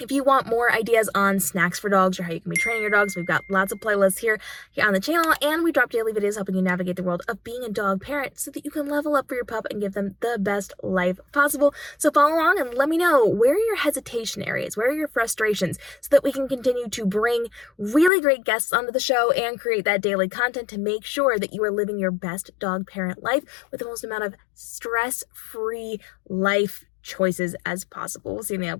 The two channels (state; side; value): drops out; right; at 18.1 s